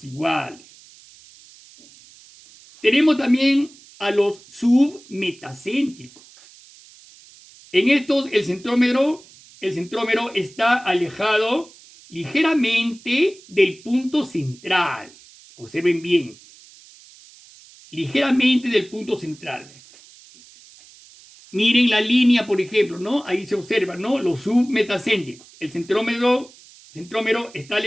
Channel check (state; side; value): noise; right; hiss, 24 dB below the sound